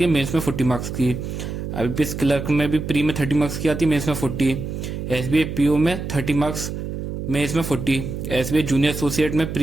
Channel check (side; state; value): right; noise; hum, 6 dB below the sound